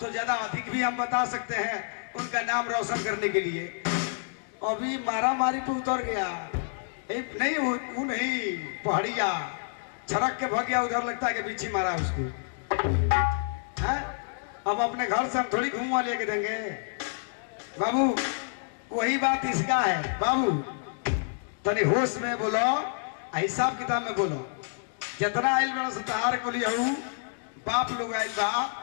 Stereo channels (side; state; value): right; silent; digital silence